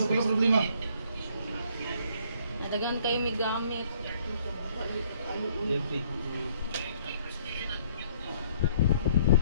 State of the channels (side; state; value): both; inverted; correlation -0.63